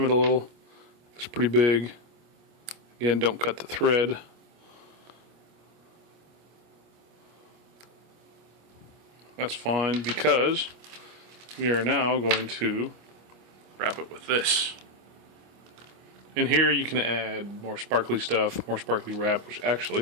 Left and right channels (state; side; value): late; left; 25 ms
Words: it a little. It's pretty big. Again, don't cut the thread. That's fine, because we are now going to wrap it with this. In here you can add more sparkly stuff, more sparkly wrap, which